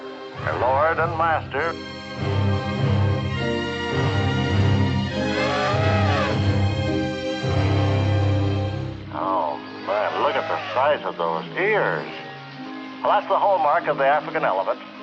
lord and master. Oh, man, look at the size of those ears. Well, that's the hallmark of the African elephant.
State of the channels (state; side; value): identical; both; correlation 1.00